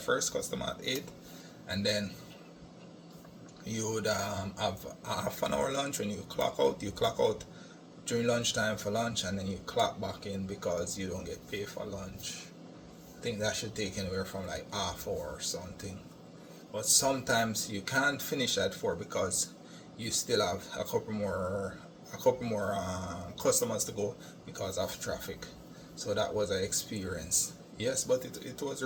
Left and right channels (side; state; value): both; identical; correlation 1.00